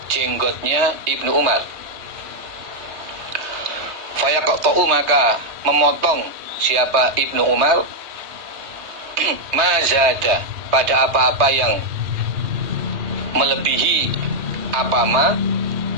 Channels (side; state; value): left; late; 3.2 ms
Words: jenggotnya Ibnu Umar, fayaqta'u, maka memotong siapa Ibnu Umar, mazada, pada apa-apa yang melebihi apama,